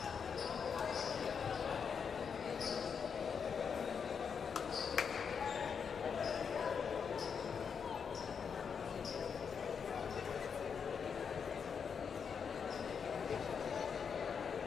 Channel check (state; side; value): quieter; right; 6.5 dB